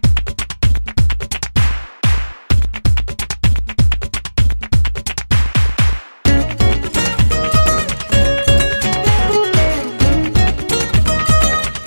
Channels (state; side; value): inverted; both; correlation -1.00